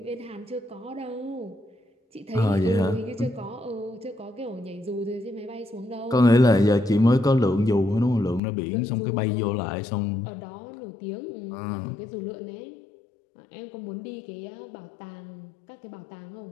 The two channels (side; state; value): right; drops out; at 8.4 s